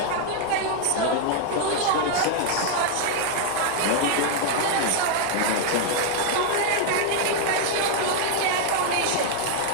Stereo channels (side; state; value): both; different; correlation 0.00